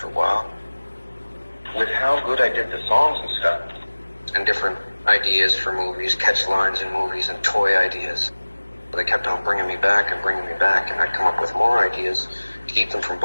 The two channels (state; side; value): inverted; both; correlation -1.00